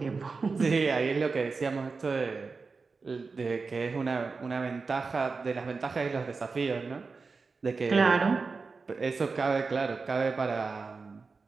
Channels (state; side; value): quieter; left; 4.4 dB